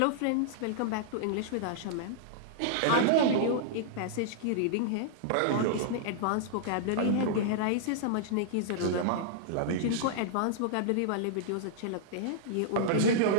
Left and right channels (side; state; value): both; different; correlation -0.02